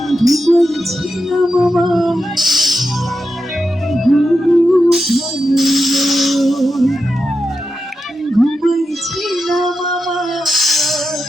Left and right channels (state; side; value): normal; both; correlation 0.89